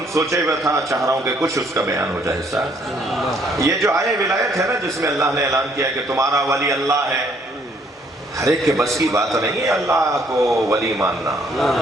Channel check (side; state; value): both; normal; correlation 0.65